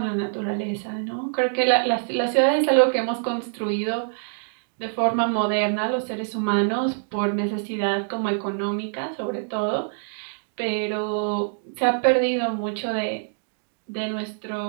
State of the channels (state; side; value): silent; left; digital silence